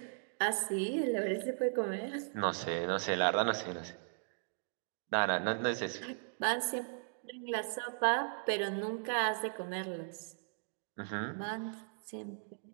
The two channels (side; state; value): left; silent; digital silence